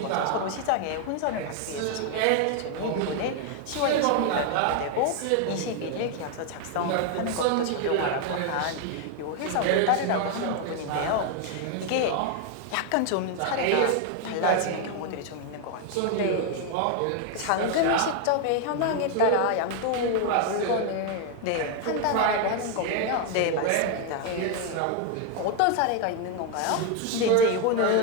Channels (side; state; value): both; different; correlation 0.01